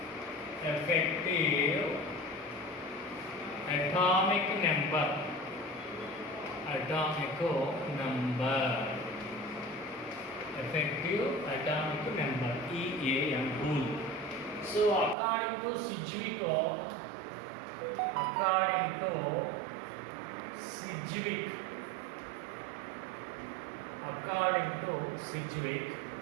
atomic number. Effective atomic number, EAN rule. So according to Sedgwick,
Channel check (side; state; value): left; drops out; at 15.2 s